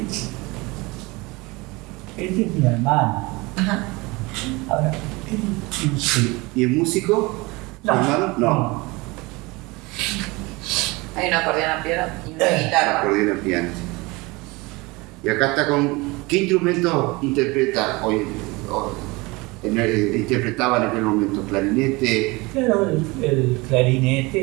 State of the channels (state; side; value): quieter; left; 24.1 dB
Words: Este es mi hermano. Ajá. Ahora, sí. ¿Y es músico? No, ¿Hermano? No. Hay un acordeón a piano y una guitarra. Acordeón a piano. Y acá está con... ¿Qué instrumento interpreta hoy? Interpretaba en aquel momento, clarinete. Claro, el